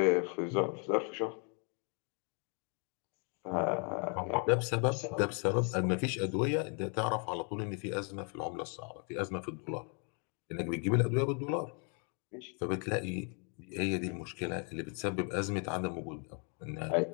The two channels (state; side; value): quieter; right; 38.7 dB